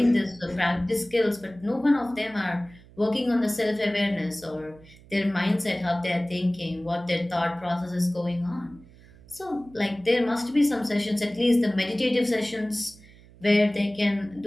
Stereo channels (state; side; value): noise; right; hum, 23 dB below the sound